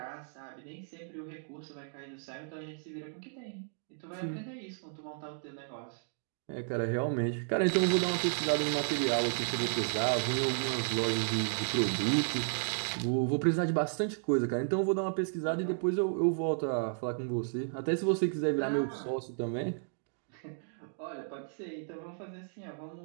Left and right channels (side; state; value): left; silent; digital silence